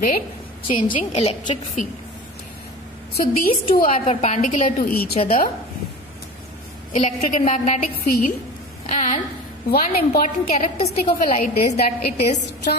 changing electric field. So these two are perpendicular to each other, electric and magnetic field. And one important characteristic of a light is that it is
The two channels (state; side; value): normal; both; correlation 0.34